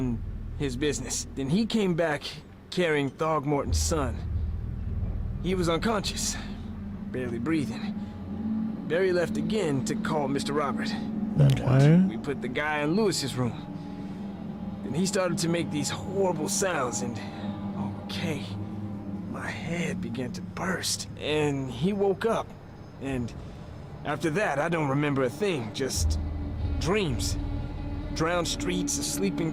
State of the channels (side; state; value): both; identical; correlation 1.00